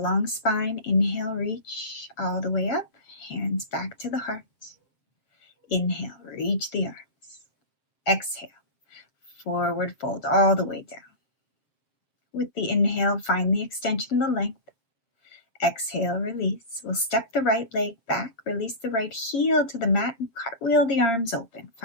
spine. Inhale, reach all the way up. Hands back to the heart. Inhale, reach the arms. Exhale, forward fold all the way down. With the inhale, find the extension, the length. Exhale, release. We'll step the right leg back, release the right heel to the mat, and cartwheel the arms open.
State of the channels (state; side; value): late; right; 7.7 ms